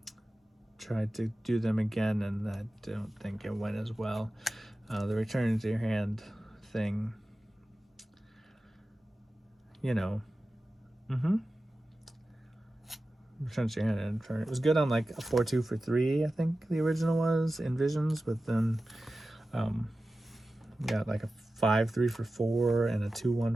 tried to do them again, and I don't think it went as well. The return to your hand thing, you know. Return to your hand and turn. It was good on like a 4-2 for 3, I think the original was in Visions, but then got like a 5-3 for 4 and a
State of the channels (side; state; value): both; normal; correlation 0.94